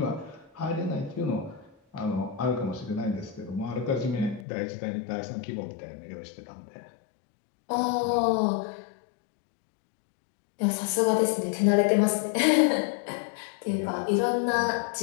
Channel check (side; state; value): right; drops out; at 4.5 s